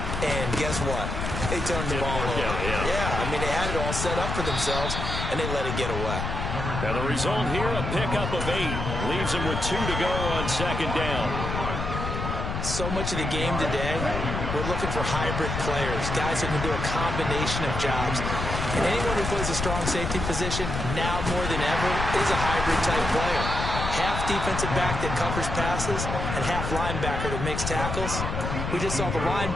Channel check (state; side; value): noise; left; rumble, 3 dB below the sound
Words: And guess what? They turned the ball over. Yeah, I mean, they had it all set up for themselves, and they let it get away. Now the result here, a pickup of 8. Leaves them with 2 to go on second down. So much of the game today, we're looking for hybrid players, guys who can do a combination of jobs. And anyone who plays a strong safety position, now more than ever, is a hybrid-type player. Half defensive back that covers passes and half linebacker that makes tackles. We just saw the